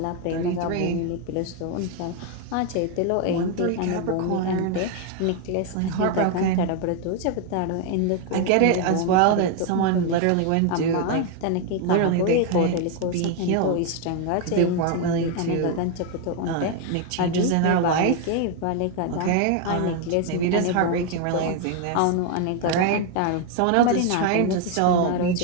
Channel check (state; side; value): different; both; correlation 0.01